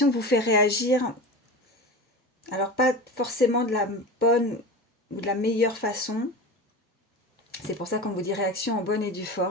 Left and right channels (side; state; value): both; normal; correlation 0.30